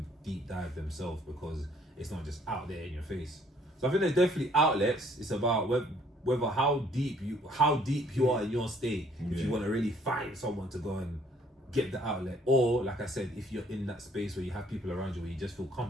deep dive themselves because it's not just out there in your face. So I think there's definitely outlets. It's about whether how deep you are in your state, if you want to really find someone to go and get the outlet, or like I said, if you're in that space where you have people around you where you just feel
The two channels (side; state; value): both; normal; correlation 0.62